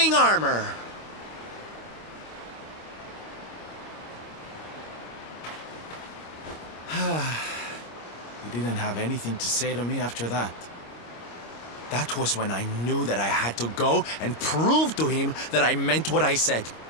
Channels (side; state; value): right; late; 25 ms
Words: armor. He didn't have anything to say to me after that. That was when I knew that I had to go and prove to him that I meant what I said.